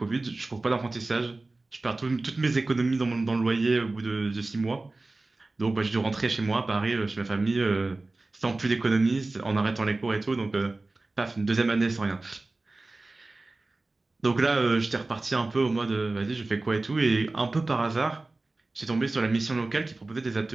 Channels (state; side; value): quieter; left; 3.2 dB